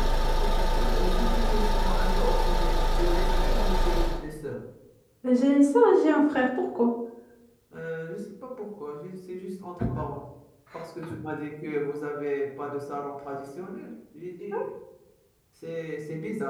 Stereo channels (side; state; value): both; identical; correlation 1.00